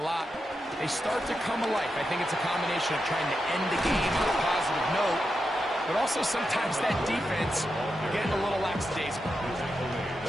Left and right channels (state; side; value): normal; both; correlation 0.87